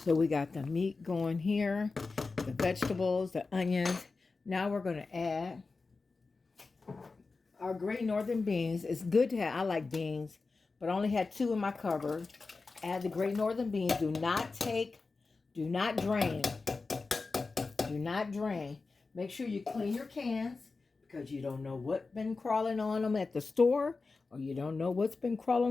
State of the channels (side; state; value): right; quieter; 4.0 dB